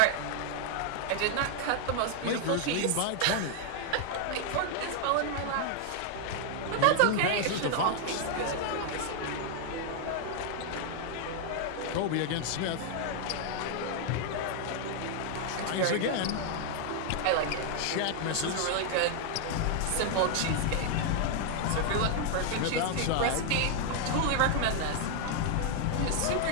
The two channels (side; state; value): both; different; correlation 0.00